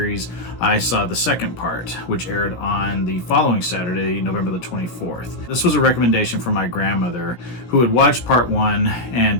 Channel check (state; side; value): late; right; 17 ms